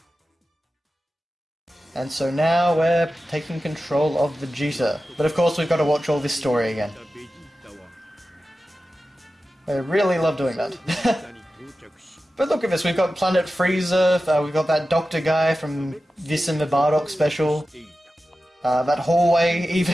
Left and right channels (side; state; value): both; normal; correlation 0.94